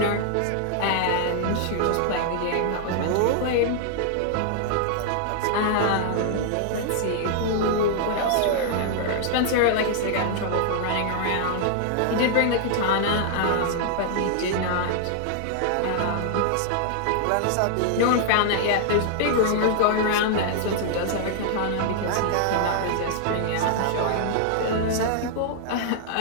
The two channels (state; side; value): different; both; correlation -0.01